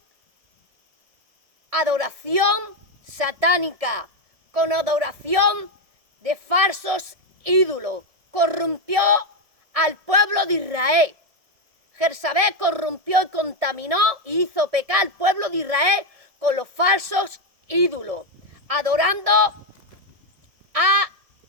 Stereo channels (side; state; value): left; late; 1.6 ms